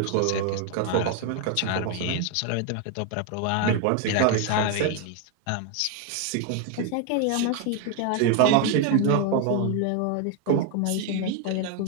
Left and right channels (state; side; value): different; both; correlation 0.01